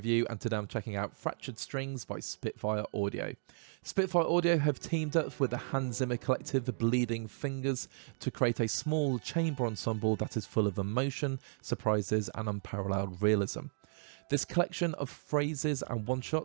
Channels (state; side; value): silent; left; digital silence